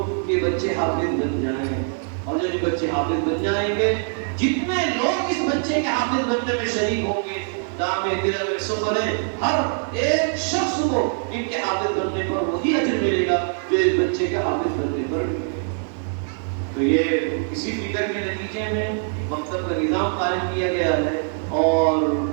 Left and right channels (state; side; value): silent; left; 60 dB below the other